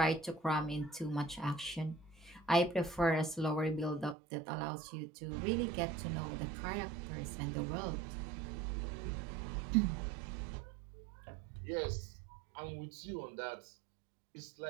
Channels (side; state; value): left; drops out; at 4.2 s